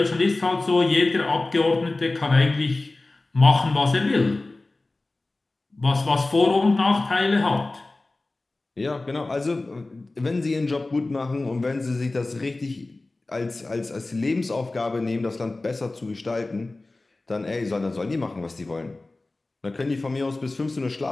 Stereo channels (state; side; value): quieter; right; 3.1 dB